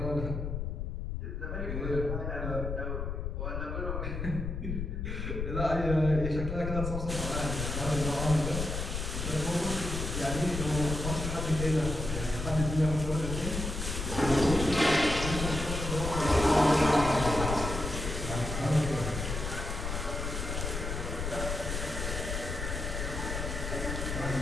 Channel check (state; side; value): noise; left; rumble, 4 dB below the sound